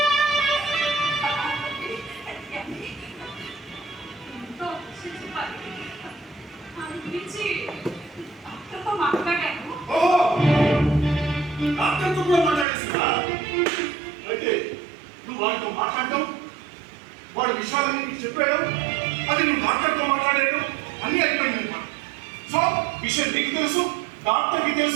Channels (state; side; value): drops out; left; at 12.7 s